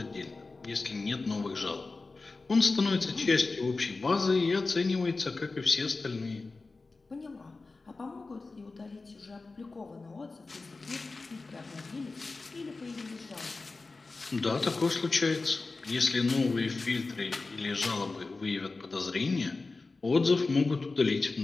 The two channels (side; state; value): right; quieter; 3.7 dB